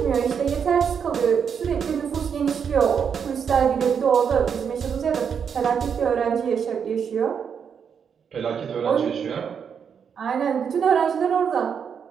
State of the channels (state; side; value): quieter; left; 7.1 dB